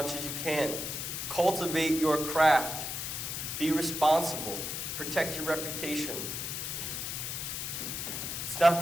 as you can, cultivate your craft, be responsible, protect your reputation. It's not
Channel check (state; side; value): noise; left; hiss, 4 dB below the sound